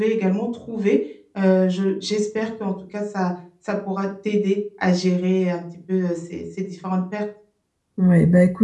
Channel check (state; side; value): identical; both; correlation 1.00